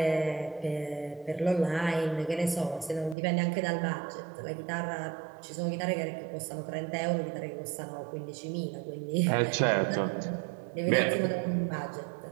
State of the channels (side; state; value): left; drops out; at 3.2 s